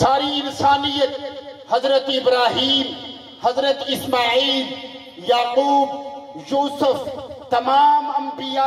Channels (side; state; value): both; identical; correlation 1.00